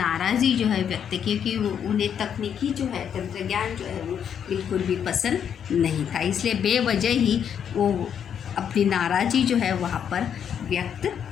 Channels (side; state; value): right; quieter; 8.3 dB